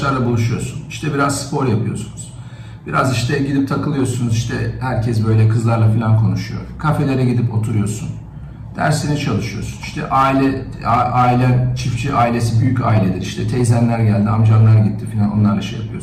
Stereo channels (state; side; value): identical; both; correlation 1.00